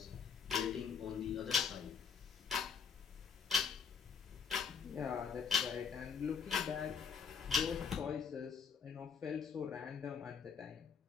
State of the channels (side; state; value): right; quieter; 6.4 dB